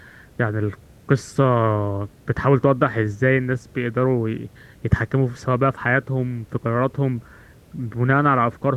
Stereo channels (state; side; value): identical; both; correlation 1.00